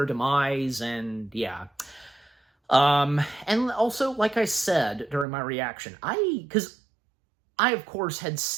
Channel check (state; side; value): drops out; left; at 5.2 s